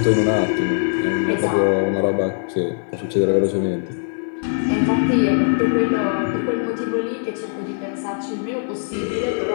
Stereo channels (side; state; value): right; silent; 59 dB below the other